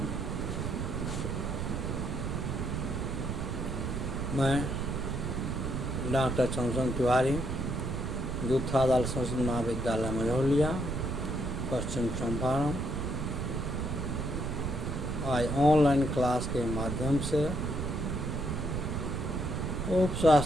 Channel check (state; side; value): noise; right; rumble, 2 dB below the sound